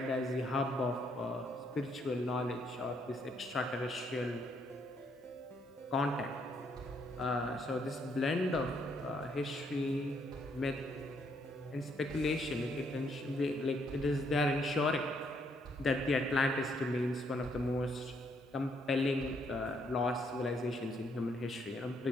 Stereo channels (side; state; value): both; normal; correlation 0.72